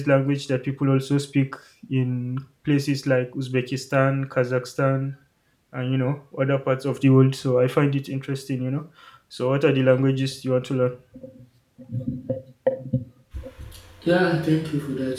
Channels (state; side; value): identical; both; correlation 1.00